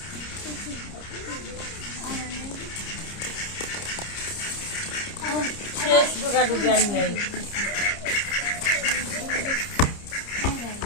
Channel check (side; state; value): right; late; 30 ms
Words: ফ্রেশ দুগা দুগি আন নেই